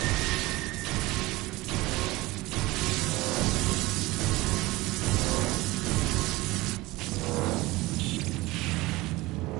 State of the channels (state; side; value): quieter; left; 20.4 dB